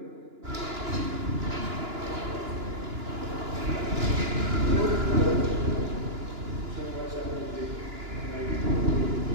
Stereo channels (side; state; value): left; late; 2.9 ms